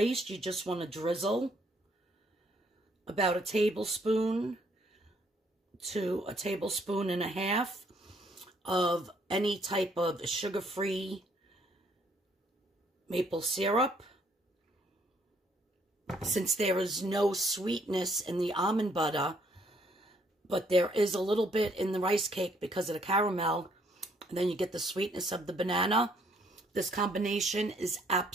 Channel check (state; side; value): normal; both; correlation 0.67